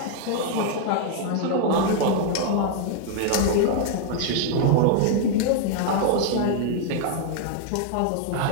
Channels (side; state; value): both; different; correlation 0.00